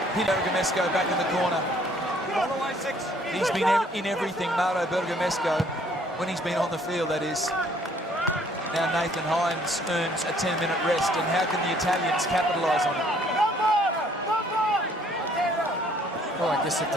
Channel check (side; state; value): both; normal; correlation 0.61